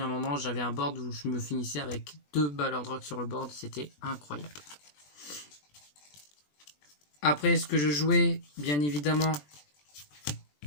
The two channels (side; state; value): right; late; 20 ms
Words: un moment j'avais un board où je me finissais avec 2 Ballard Rock sur le board, c'était incroyable. Après ce que je jouais, bien évidemment,